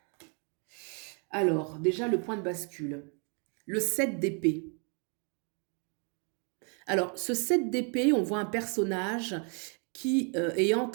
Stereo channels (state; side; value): quieter; left; 39.1 dB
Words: Alors, déjà le point de bascule. Le 7 d'épée. Alors, ce 7 d'épée, on voit un personnage qui est en